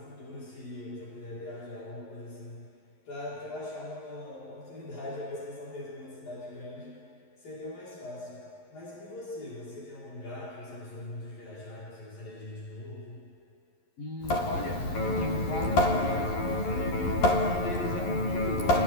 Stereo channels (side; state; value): right; late; 11 ms